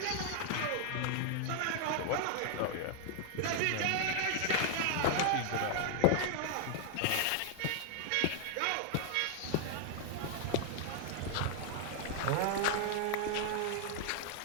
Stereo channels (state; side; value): different; both; correlation 0.00